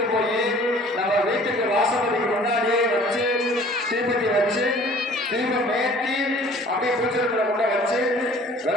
போய் நம்ம வீட்டுக்கு வாசப்படிக்கு முன்னாடியே வச்சு தீபத்தி வச்சு தீபம் ஏற்றி அப்படியே பூஜைகளை கொண்ட வச்சு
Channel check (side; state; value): both; normal; correlation 0.51